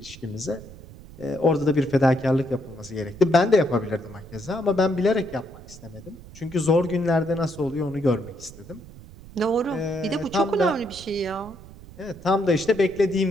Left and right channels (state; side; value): noise; right; rumble, 18 dB below the sound